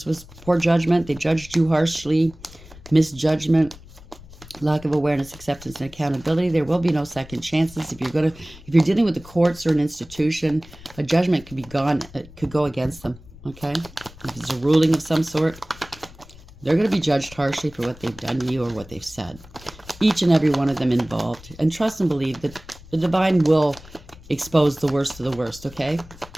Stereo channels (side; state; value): left; noise; rumble, 20 dB below the sound